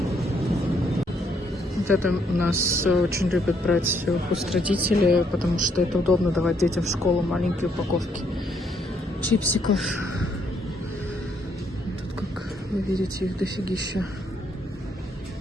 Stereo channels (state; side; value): normal; both; correlation 0.71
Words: Вот это у нас очень любят брать хост-родители, потому что это удобно давать детям в школу маленькие упаковки чипсиков. Вы видите, их дофигища.